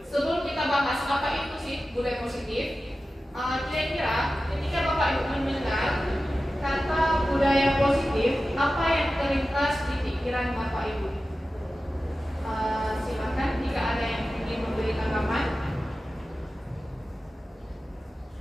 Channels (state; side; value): normal; both; correlation 0.94